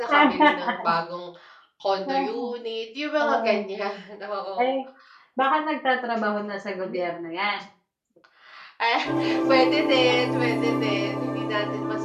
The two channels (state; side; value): identical; both; correlation 1.00